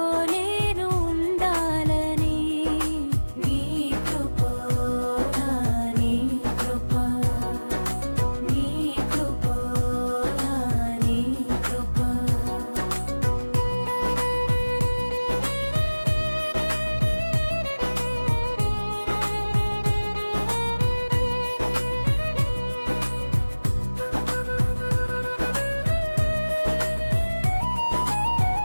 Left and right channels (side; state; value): both; inverted; correlation -1.00